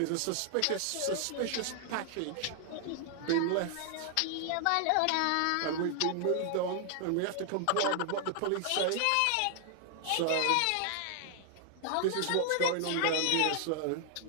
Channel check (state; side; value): different; both; correlation 0.00